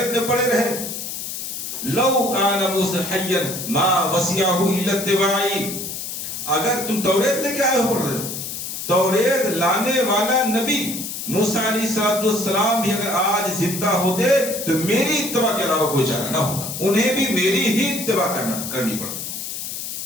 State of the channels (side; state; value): left; noise; hiss, 6 dB below the sound